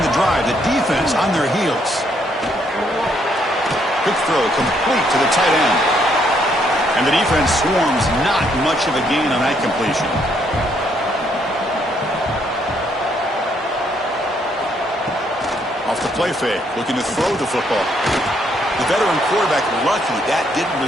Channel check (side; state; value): both; normal; correlation 0.71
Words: the drive. The defense on their heels. Quick throw complete to the tight end. And the defense swarms, not much of a gain on that completion. Off the play fake, looking to throw the football. The veteran quarterback lucky that didn't